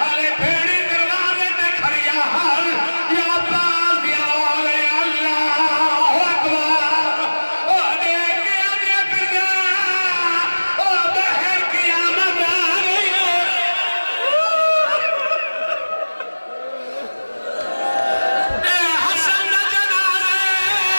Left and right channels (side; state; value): both; inverted; correlation -1.00